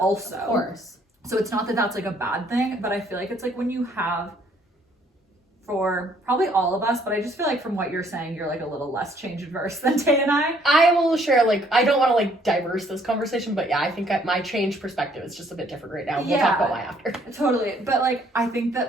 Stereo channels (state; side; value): normal; both; correlation 0.64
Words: Of course. So it's not that that's like a bad thing, but I feel like it's like when you have, for probably all of us, but I just feel like from what you're saying, you're like a little less change adverse than Tay and I. I will share, like, I don't want to like diverse this conversation, but yeah, I think my change perspective is just a bit different right now. We'll talk about why after. Totally. But like, I think